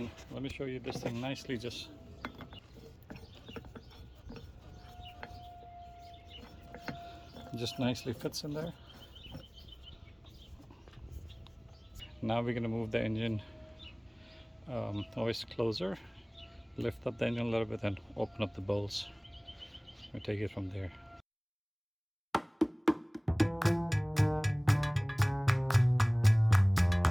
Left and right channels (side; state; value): both; identical; correlation 1.00